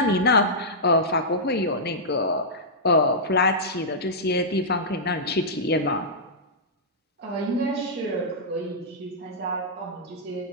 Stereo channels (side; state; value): both; normal; correlation -0.12